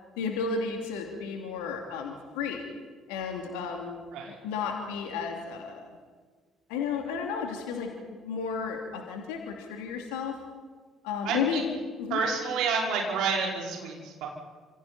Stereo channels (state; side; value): normal; both; correlation 0.35